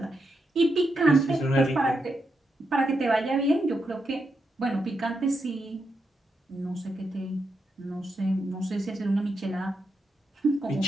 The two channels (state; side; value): normal; both; correlation 0.84